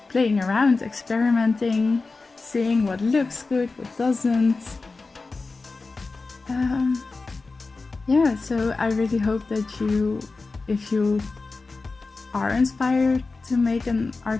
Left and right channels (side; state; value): right; quieter; 3.8 dB